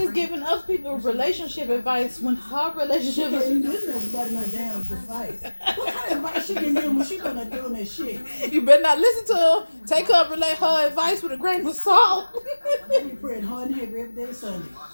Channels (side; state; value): both; inverted; correlation -1.00